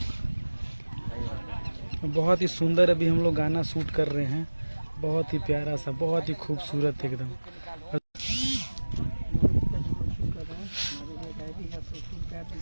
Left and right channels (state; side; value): inverted; both; correlation -1.00